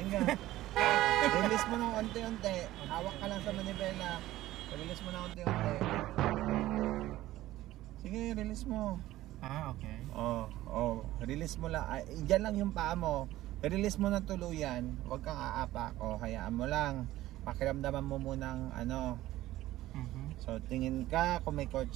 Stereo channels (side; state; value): left; quieter; 15.6 dB